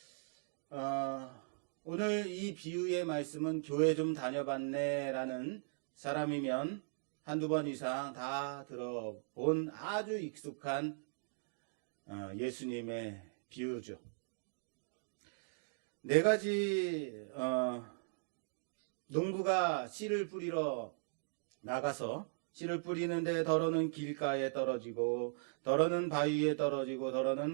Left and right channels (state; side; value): silent; left; digital silence